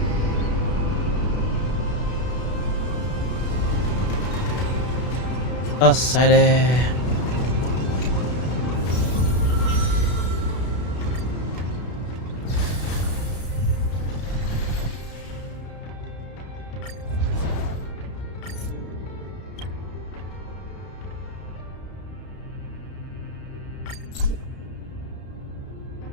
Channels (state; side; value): late; right; 32 ms